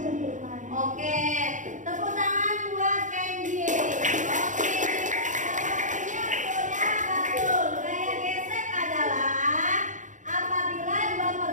Oke, tepuk tangan buat Kenji. Oke, jawabannya sudah betul. Gaya gesek adalah apabila dua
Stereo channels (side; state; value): left; late; 0.36 ms